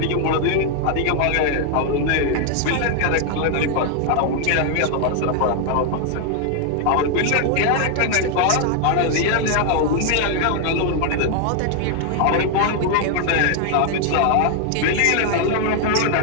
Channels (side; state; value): both; different; correlation 0.00